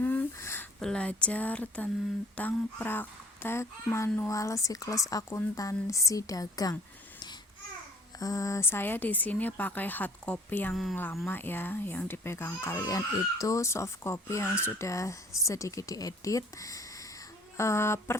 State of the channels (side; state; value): both; normal; correlation 0.54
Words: belajar tentang praktek manual siklus akuntansi dagang. Saya di sini pakai hard copy yang lama ya, yang dipegang kalian itu soft copy yang sudah sedikit diedit.